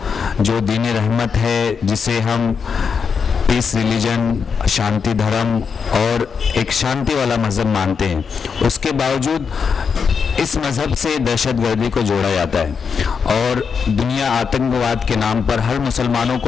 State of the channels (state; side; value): quieter; right; 6.0 dB